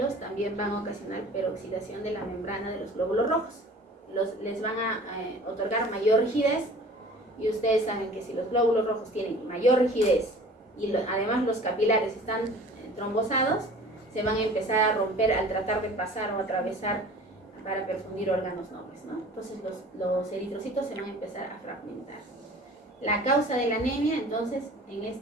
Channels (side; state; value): both; normal; correlation 0.45